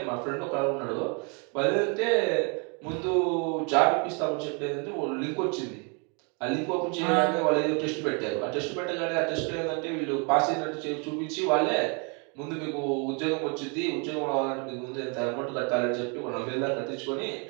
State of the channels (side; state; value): left; quieter; 35.4 dB